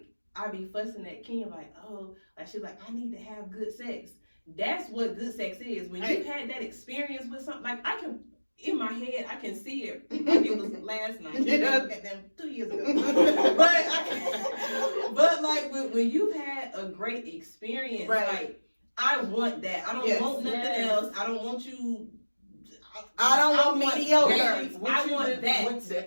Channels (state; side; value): inverted; both; correlation -1.00